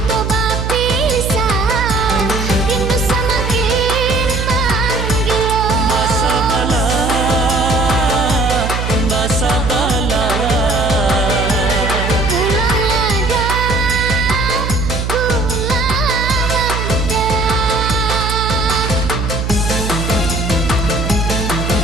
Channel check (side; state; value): right; noise; hum, 3 dB below the sound